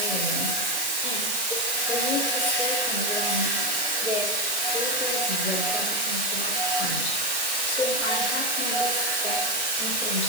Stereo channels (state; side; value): noise; right; hiss, 3 dB below the sound